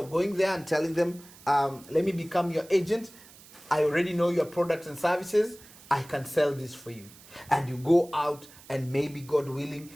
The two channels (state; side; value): noise; right; hiss, 22 dB below the sound